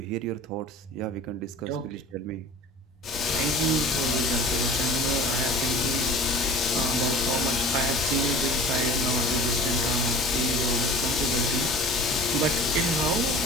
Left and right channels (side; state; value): both; normal; correlation 0.41